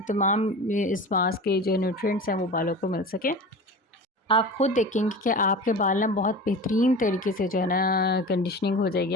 तमाम इस मास्क के जो न्यूट्रिएंट्स हैं वो बालों को मिल सके। आप खुद देखेंगे कि आपके बाल ना बहुत बेहतरीन तरीके से जो है ना कंडीशनिंग हो जाएगी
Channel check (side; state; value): both; normal; correlation 0.33